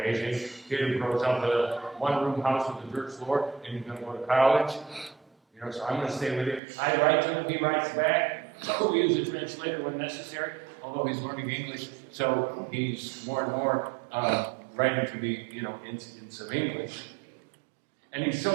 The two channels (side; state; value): left; drops out; at 6.6 s